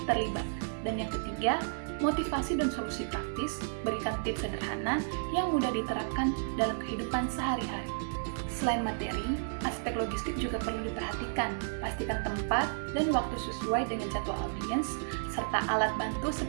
terlibat. Dan yang ketiga, motivasi dan solusi praktis, berikan tips sederhana yang mudah diterapkan dalam kehidupan sehari-hari. Selain materi, aspek logistik juga perlu diperhatikan. Pastikan tempat dan waktu sesuai dengan jadwal audiens, serta alat bantu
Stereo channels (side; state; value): left; silent; digital silence